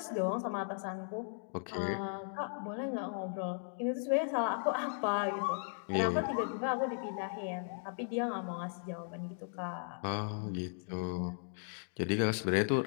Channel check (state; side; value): silent; right; digital silence